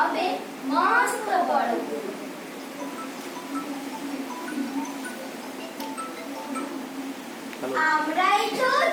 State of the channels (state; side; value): identical; both; correlation 1.00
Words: মস্ত বড়। আমরাই তো